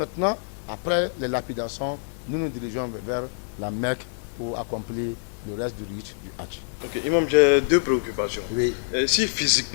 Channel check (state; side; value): silent; right; digital silence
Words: après les lapidations, nous nous dirigeons vers la Mecque pour accomplir le reste du rite du Hajj. Ok, Imam, j'ai 2 préoccupations. Oui. Si